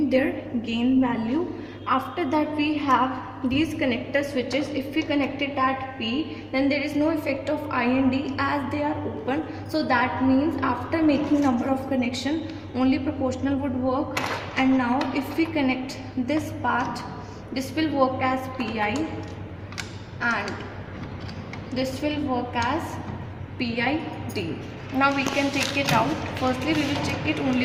their gain value. After that we have these connector switches. If we connect it at P, then there is no effect of I and D as they are open. So that means after making number of connection, only proportional would work. And now if we connect this part, this will work as Pi and this will work as PID. Now we can take it out. Firstly we will check it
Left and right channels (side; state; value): both; identical; correlation 1.00